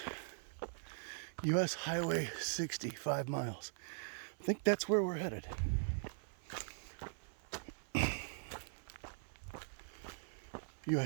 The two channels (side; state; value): left; silent; 50 dB below the other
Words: U.S. Highway 60, 5 miles. I think that's where we're headed.